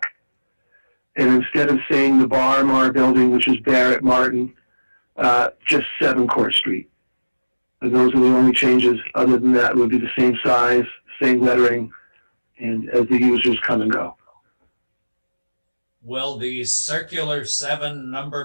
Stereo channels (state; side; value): inverted; both; correlation -1.00